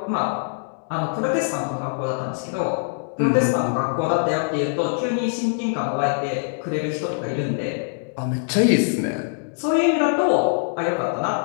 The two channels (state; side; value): silent; right; digital silence